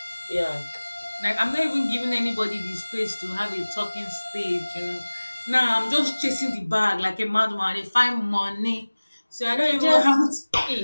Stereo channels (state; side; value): inverted; both; correlation -1.00